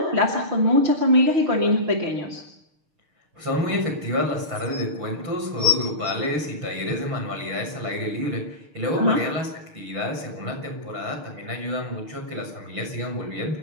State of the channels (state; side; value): late; left; 6.5 ms